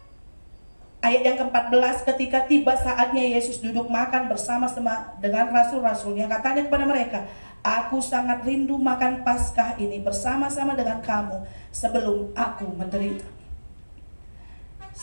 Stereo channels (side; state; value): both; inverted; correlation -1.00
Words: Ayat yang ke-14, ketika tiba saatnya Yesus duduk makan bersama-sama dengan rasul-rasulnya, katanya kepada mereka, aku sangat rindu makan Paskah ini bersama-sama dengan kamu sebelum aku menderita.